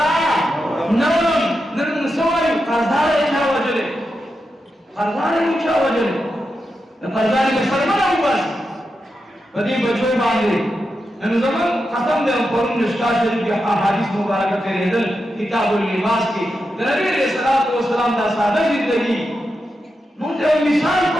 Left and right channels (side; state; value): both; normal; correlation 0.88